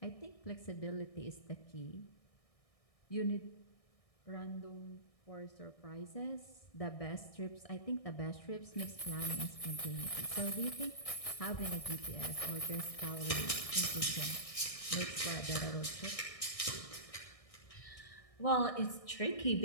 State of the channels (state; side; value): late; right; 1.6 ms